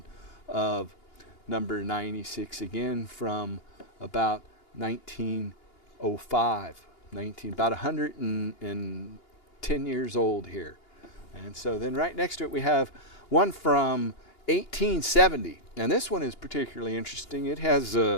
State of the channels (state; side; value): late; right; 2.8 ms